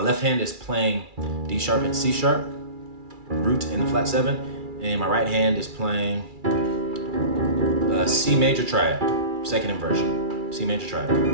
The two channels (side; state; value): left; late; 2.4 ms